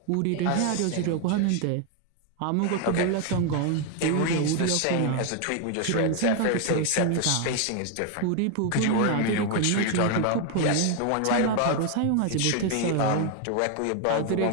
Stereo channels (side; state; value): both; different; correlation 0.01